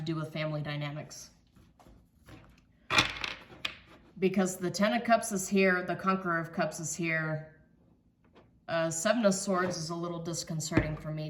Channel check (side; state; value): both; identical; correlation 1.00